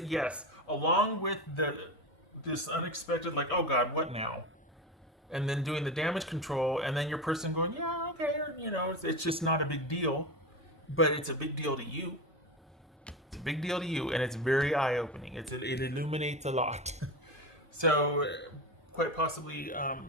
yes, along with this unexpected, like, oh God, what now? And then doing the damage control, and then your person going, yeah, okay, or, it's just not a big deal, but it's a big deal to you. It's a big deal to you, and it's very eye opening. It illuminates a lot. So, quite possibly,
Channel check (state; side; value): normal; both; correlation 0.21